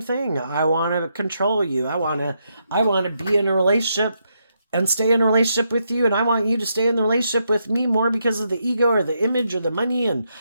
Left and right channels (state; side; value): inverted; both; correlation -0.80